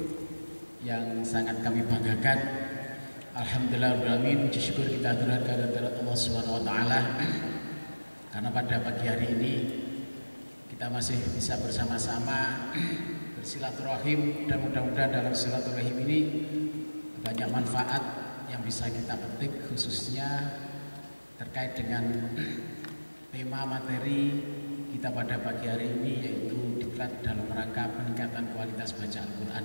yang sangat kami banggakan. Alhamdulillahirrahmanirrahim, puji syukur kita aturkan kepada Allah Subhanahu wa taala karena pada pagi hari ini kita masih bisa bersama-sama bersilaturahim, dan mudah-mudahan dalam silaturahim ini banyak manfaat yang bisa kita petik, khususnya terkait dengan tema materi kita pada pagi hari ini, yaitu diklat dalam rangka peningkatan kualitas baca Al-Quran,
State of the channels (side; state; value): both; inverted; correlation -1.00